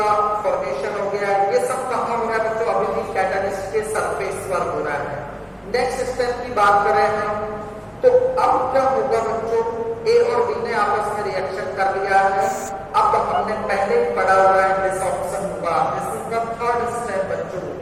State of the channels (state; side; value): identical; both; correlation 1.00